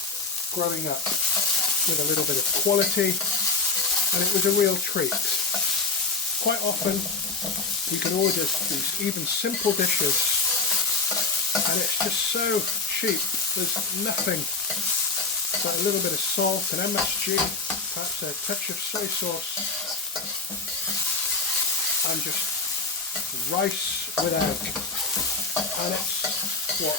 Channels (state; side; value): quieter; right; 4.0 dB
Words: growing up, with a little bit of quality, and it was a real treat. Quite often you can order these even simple dishes and it's just so cheap. There's nothing but a little bit of salt and MSG, perhaps a touch of soy sauce, and just rice with egg. And it's what,